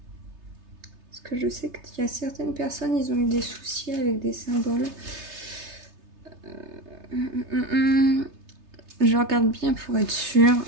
Parce que je sais qu'il y a certaines personnes, ils ont eu des soucis avec des symboles. Je regarde bien pour être sûre.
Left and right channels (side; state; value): left; late; 3.3 ms